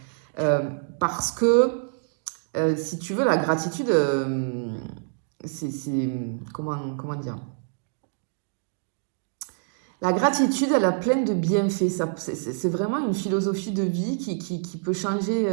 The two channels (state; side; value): silent; left; digital silence